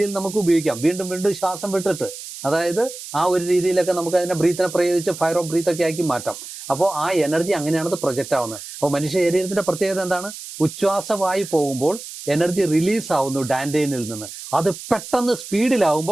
നമുക്ക് ഉപയോഗിക്കാം. വീണ്ടും വീണ്ടും ശ്വാസം വിട്ടിട്ട്, അതായത് ആ ഒരു രീതിയിലൊക്കെ നമുക്ക് അതിനെ ബ്രീത്തിനെ പ്രയോഗിച്ച് ഫയർ ഓഫ് ബ്രീത്ത് ഒക്കെ ആക്കി മാറ്റാം. അപ്പോൾ ആ എനർജി അങ്ങനെയാണ് പ്രൊജക്റ്റ് ആവുന്നത്. അപ്പോൾ മനുഷ്യ ശരീരത്തിന്റെ പ്രത്യേകത എന്താണ്? ഉച്ഛ്വാസവായു പോകുമ്പോൾ എനർജി റിലീസ് ആവുന്നു ഡാൻഡൈനിൽ നിന്ന്. അത് പെട്ടെന്ന്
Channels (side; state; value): right; noise; hiss, 12 dB below the sound